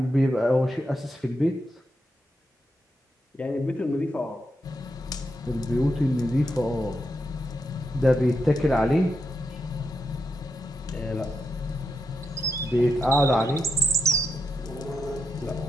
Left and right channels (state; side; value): normal; both; correlation 0.84